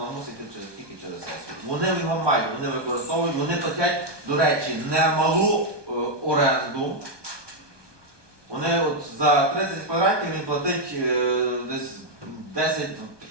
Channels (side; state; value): left; late; 1.2 ms